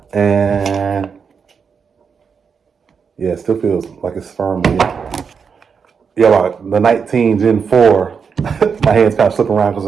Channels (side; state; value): left; quieter; 6.1 dB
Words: and yeah, it still feels like it's firm again. Yeah, like the 19 Gen 4, my hand's kind of slipping around because